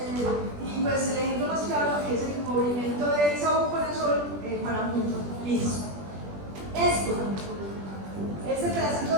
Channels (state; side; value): late; left; 20 ms